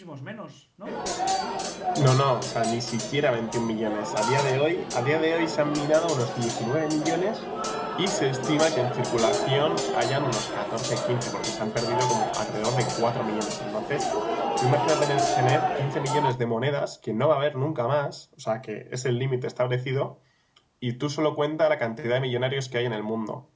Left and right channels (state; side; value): identical; both; correlation 1.00